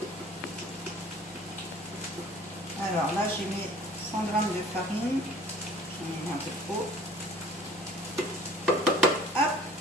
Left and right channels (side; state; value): both; normal; correlation 0.50